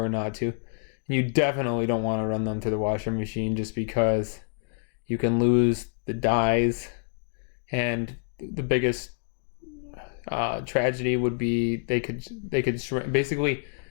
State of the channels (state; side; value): silent; right; digital silence